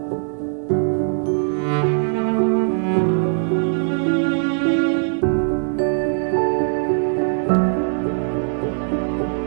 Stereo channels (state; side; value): silent; left; digital silence